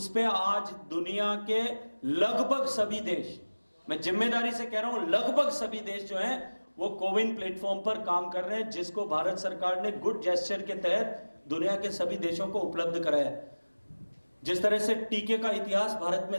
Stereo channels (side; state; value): both; inverted; correlation -1.00